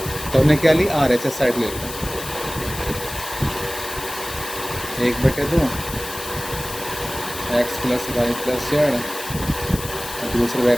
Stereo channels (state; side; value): noise; left; hiss, 10 dB below the sound